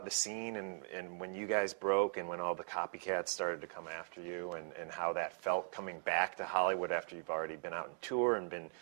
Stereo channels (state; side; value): silent; left; 51 dB below the other